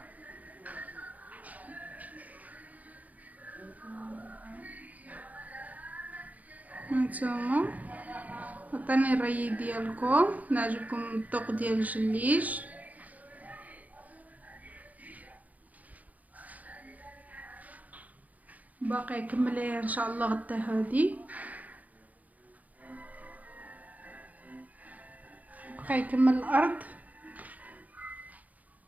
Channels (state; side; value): late; left; 0.076 ms